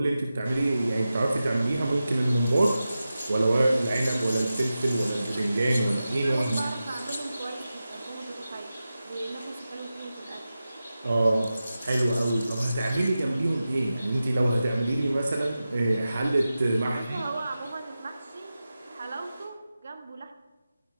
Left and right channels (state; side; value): inverted; both; correlation -0.93